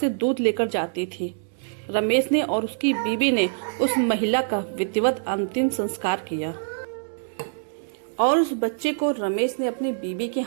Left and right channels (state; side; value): silent; left; digital silence